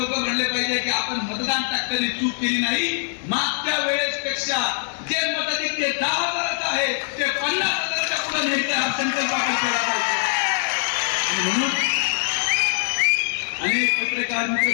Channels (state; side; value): silent; right; digital silence